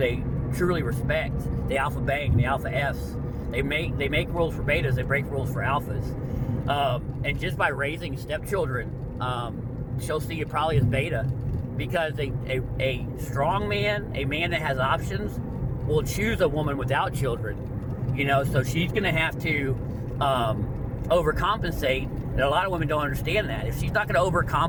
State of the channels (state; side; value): identical; both; correlation 1.00